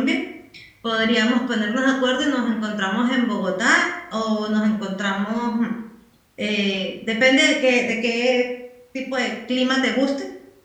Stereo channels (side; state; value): both; identical; correlation 1.00